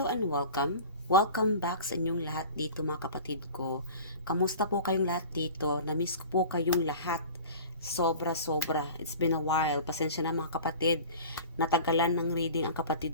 and welcome. Welcome back sa inyong lahat dito mga kapatid ko. Kamusta po kayong lahat dito? Namiss ko po kayong lahat. Sobra-sobra. It's been a while. Pasensya na mga kapatid. Natagalan ng reading ang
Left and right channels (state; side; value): inverted; both; correlation -0.39